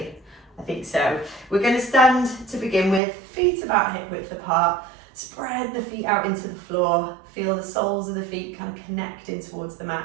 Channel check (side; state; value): left; drops out; at 3.0 s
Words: I think so. We're going to stand to begin with, feet about hip width apart. Spread the feet out into the floor, feel the soles of the feet kind of connecting towards the